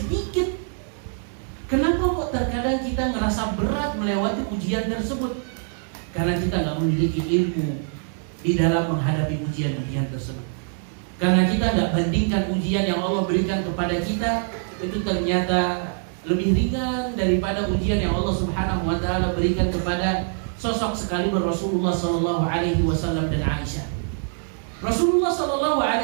Kenapa kok terkadang kita ngerasa berat melewati ujian tersebut? Karena kita nggak memiliki ilmu di dalam menghadapi ujian-ujian tersebut. Karena kita nggak bandingkan ujian yang Allah berikan kepada kita itu ternyata lebih ringan daripada ujian yang Allah subhanahu wa ta'ala berikan kepada sosok sekaliber Rasulullah sallallahu alaihi wasallam dan Aisyah. Rasulullah sallallahu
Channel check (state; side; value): silent; left; 63 dB below the other